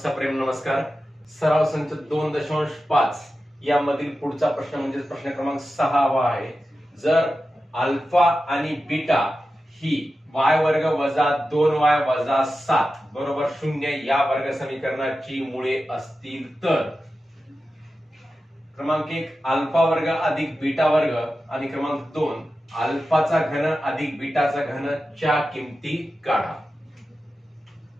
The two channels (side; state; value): both; normal; correlation 0.92